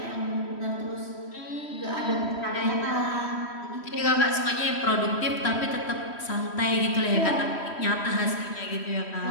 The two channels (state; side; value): late; right; 3.1 ms